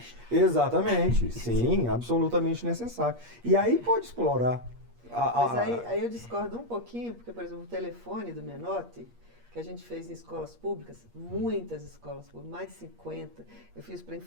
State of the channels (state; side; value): late; left; 8.5 ms